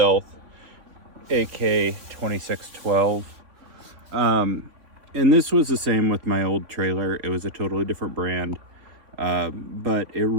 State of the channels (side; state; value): left; late; 3.7 ms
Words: AK2612. And this was the same with my old trailer. It was a totally different brand, but it